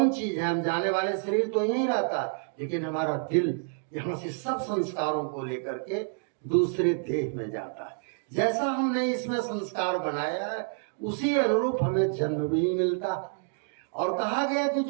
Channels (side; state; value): left; silent; digital silence